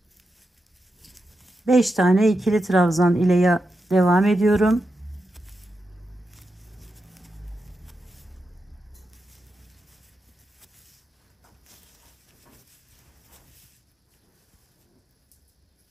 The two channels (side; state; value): both; normal; correlation 0.88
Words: 5 tane ikili trabzan ile devam ediyorum.